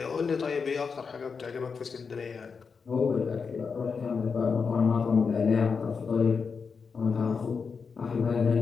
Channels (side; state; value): right; quieter; 5.5 dB